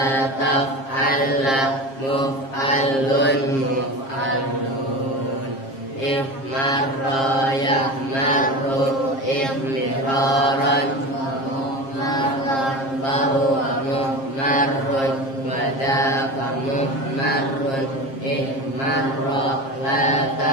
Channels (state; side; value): late; right; 7.4 ms